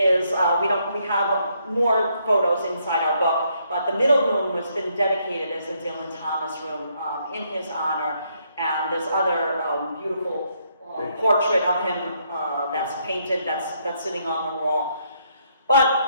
we have more photos inside our book, but the middle room has been dedicated as a Dylan Thomas room in his honor, and there's other beautiful portrait of him that's painted, that's sitting on the wall.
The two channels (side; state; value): both; inverted; correlation -0.73